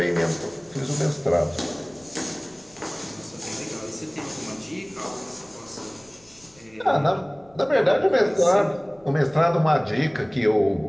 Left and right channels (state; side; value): noise; left; rumble, 29 dB below the sound